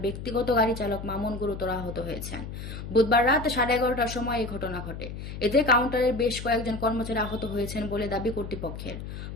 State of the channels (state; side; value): noise; left; hum, 9 dB below the sound